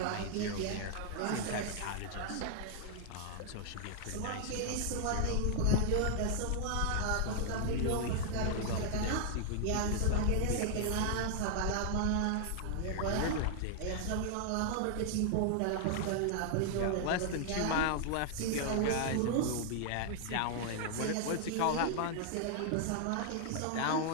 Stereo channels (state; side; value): different; both; correlation 0.00